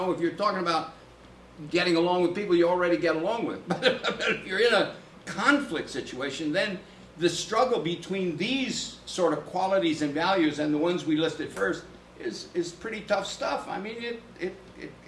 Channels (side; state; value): both; identical; correlation 1.00